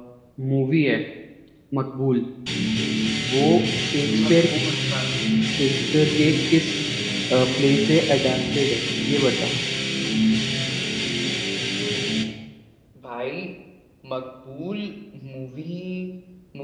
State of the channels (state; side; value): identical; both; correlation 1.00